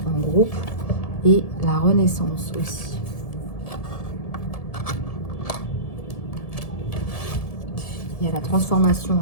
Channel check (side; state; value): right; late; 1.7 ms